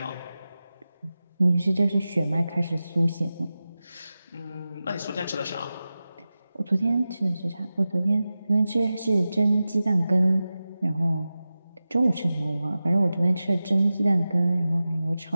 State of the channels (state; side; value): inverted; both; correlation -0.95